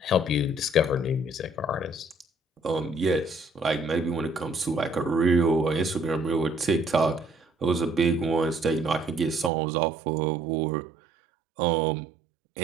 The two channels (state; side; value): drops out; left; at 9.5 s